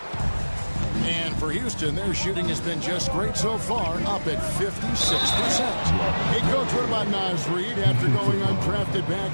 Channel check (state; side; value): inverted; both; correlation -1.00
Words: And for Houston, their shooting has been just great so far, up at 56%. Hey, Coach, what about Naz Reid after going undrafted